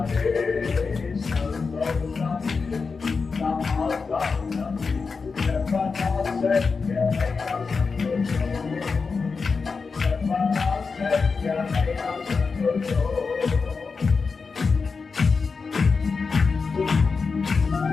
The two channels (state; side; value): quieter; right; 4.8 dB